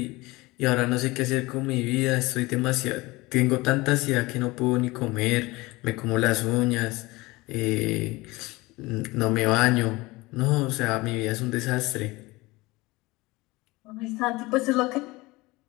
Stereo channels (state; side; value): quieter; right; 21.8 dB